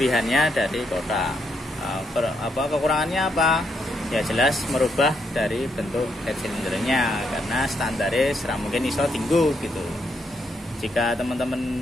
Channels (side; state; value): both; normal; correlation 0.77